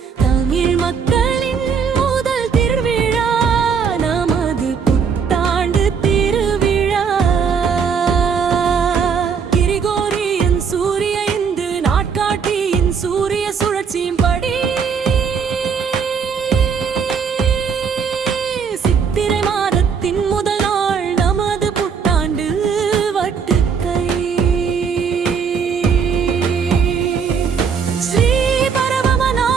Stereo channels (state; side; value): quieter; left; 6.3 dB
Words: தமிழ் மக்களின் முதல் திருவிழா, நமது புத்தாண்டு திருவிழா. கிரிகோரியன் சூரிய இந்து நாட்காட்டியின் சூரிய சுழற்சியின் படி